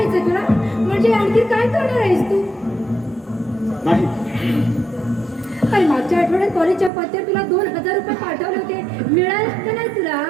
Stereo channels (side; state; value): left; drops out; at 6.9 s